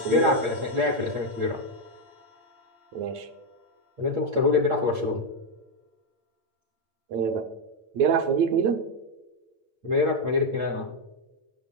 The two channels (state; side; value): late; left; 8.8 ms